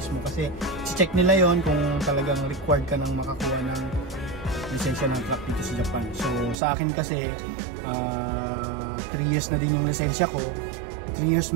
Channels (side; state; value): left; drops out; at 6.6 s